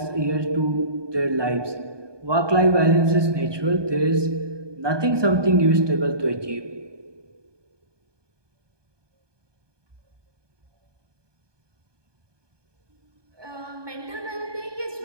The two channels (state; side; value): late; left; 1.2 ms